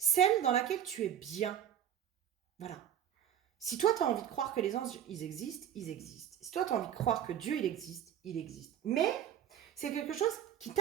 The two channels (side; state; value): left; quieter; 10.0 dB